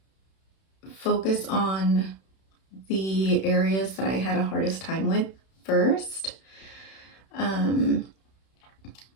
focus on the areas that I had a hardest time with first.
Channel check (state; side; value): late; right; 31 ms